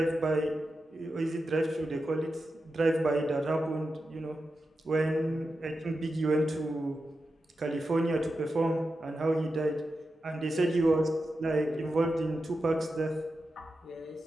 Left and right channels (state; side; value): normal; both; correlation 0.90